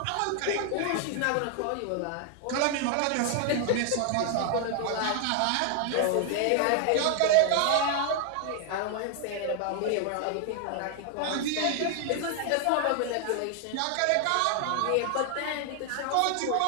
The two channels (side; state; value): both; different; correlation 0.00